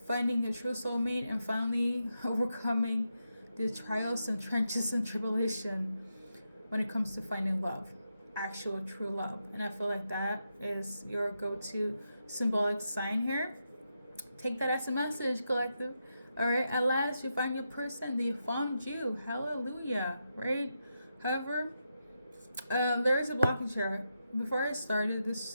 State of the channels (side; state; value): both; inverted; correlation -0.85